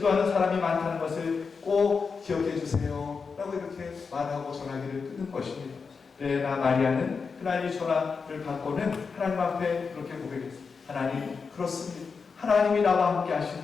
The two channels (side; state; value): right; quieter; 5.2 dB